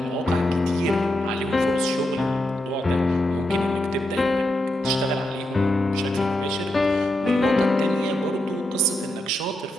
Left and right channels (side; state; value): both; normal; correlation 0.85